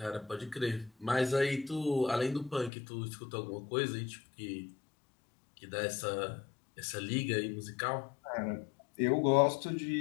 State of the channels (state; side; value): drops out; right; at 2.7 s